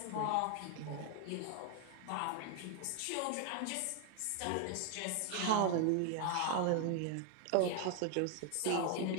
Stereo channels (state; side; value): different; both; correlation 0.00